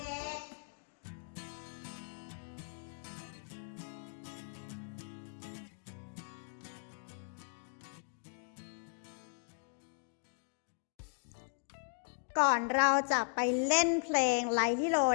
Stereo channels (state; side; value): silent; right; digital silence